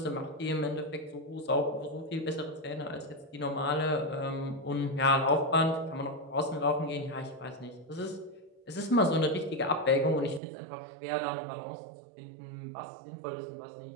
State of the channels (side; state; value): left; drops out; at 10.4 s